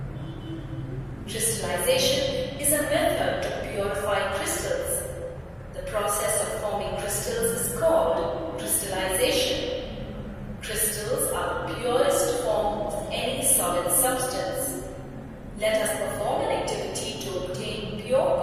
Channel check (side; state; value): both; identical; correlation 1.00